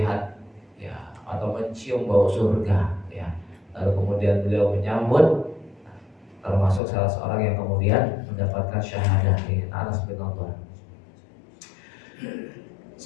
ya atau mencium bau surga ya. Lalu kemudian beliau menyambut, termasuk salah seorang yang kemudian mendapatkan syahadah ini, Anas bin Nadhr.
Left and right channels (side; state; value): right; drops out; at 6.8 s